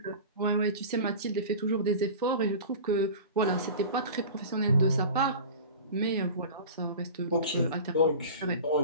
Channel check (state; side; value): inverted; both; correlation -0.36